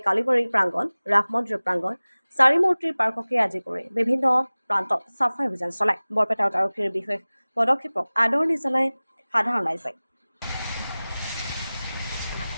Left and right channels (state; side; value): inverted; both; correlation -0.99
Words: কালীবাৰী প্ৰাংগণ, ৰাস মন্দিৰ প্ৰাংগণ, চাৰিমূৰ্তিৰ পাৰ্ককে আদি কৰি বিভিন্ন প্ৰান্তত চাফাই অভিযান চলায়। বৰপেটাত আৰক্ষীৰ বিশেষ পদক্ষেপক আদৰণি জনায় সাধাৰণ ৰাইজে।